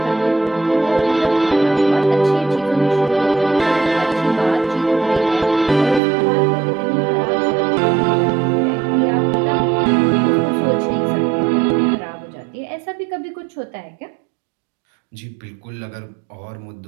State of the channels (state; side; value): drops out; left; at 6.0 s